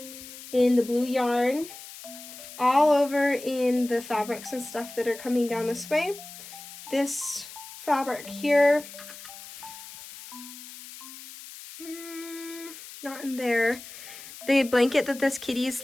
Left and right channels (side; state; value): left; noise; hiss, 15 dB below the sound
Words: In the blue yarn, all over in the fabrics and stuff that are coming down this way. This fabric here, not in there. The blanket that this kitty is